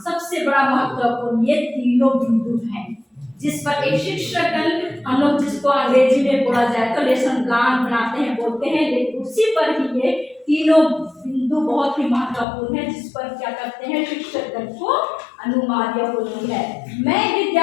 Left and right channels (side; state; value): right; drops out; at 12.5 s